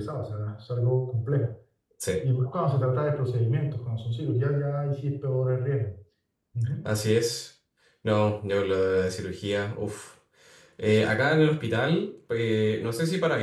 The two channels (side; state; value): both; identical; correlation 1.00